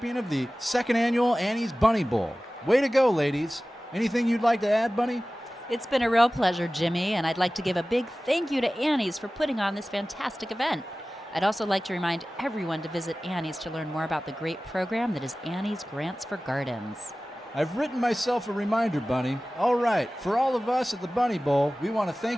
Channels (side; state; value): both; normal; correlation 0.97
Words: of the second annual Annie's Bunny Bowl. Way to go, ladies. Anything you'd like to add, Bunny? It's been a real pleasure, Jimmy, and I'd like to give a big thank you to Annie's for putting on this fantastic event. I'd also like to remind everyone to visit Annie's to learn more about the great program that is Annie's Grants for Gardens. I've written myself a reminder, Bunny. All right, for all of us at the Bunny Bowl, we want to